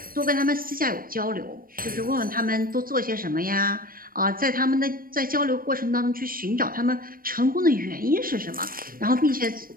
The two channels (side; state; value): left; late; 0.41 ms